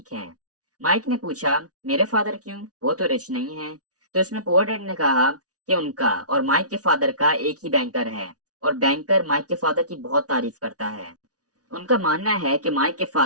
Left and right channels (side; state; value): left; late; 0.68 ms